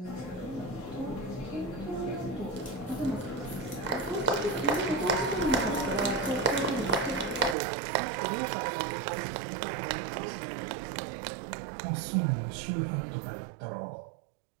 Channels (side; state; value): left; drops out; at 7.6 s